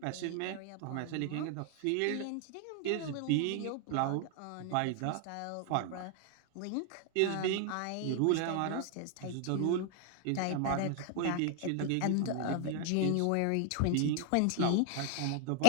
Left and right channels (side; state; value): both; different; correlation 0.00